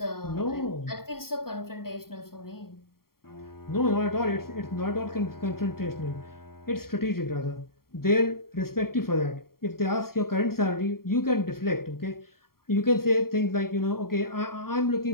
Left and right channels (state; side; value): late; right; 0.93 ms